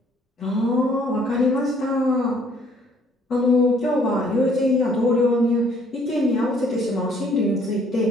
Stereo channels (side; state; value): both; normal; correlation 0.62